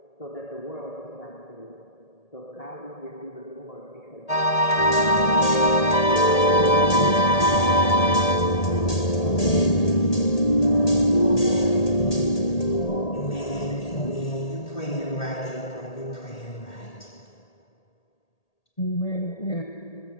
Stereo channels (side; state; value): right; late; 1.8 ms